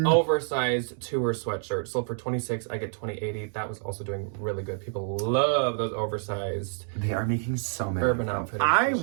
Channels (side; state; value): left; silent; digital silence